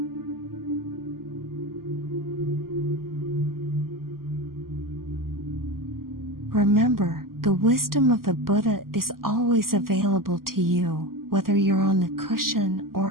Remember, the wisdom of the Buddha is always available to you, whether you're on the cushion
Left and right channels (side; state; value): left; late; 0.92 ms